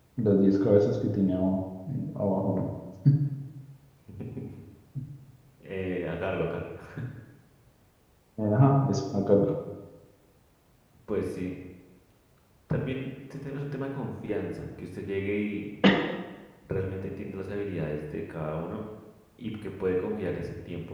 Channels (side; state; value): both; identical; correlation 1.00